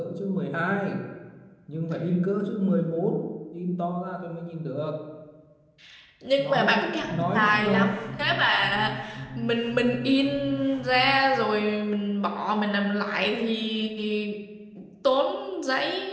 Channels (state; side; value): identical; both; correlation 1.00